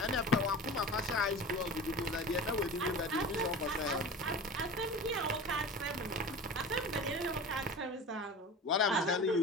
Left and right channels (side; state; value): both; normal; correlation 0.34